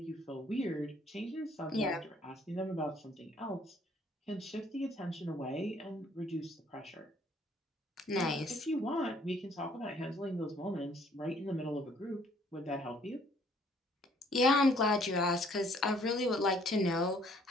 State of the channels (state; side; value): normal; both; correlation 0.62